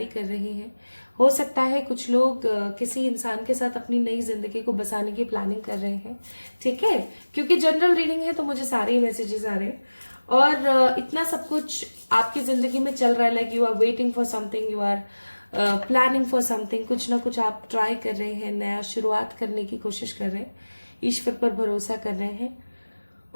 कर रहे हैं। हो सकता है कुछ लोग किसी इंसान के साथ अपनी नई जिंदगी को बसाने की प्लानिंग कर रहे हैं। ठीक है, क्योंकि जनरल रीडिंग है तो मुझे सारे ही मैसेजेस आ रहे हैं। और इतना सब कुछ आपकी जिंदगी में चल रहा है, like you are waiting for something, you are planning for something. कुछ ना कुछ आप ट्राई कर रहे हैं, नया शुरुआत करने की कोशिश कर रहे हैं, ईश्वर पर भरोसा कर रहे हैं।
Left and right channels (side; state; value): both; inverted; correlation -1.00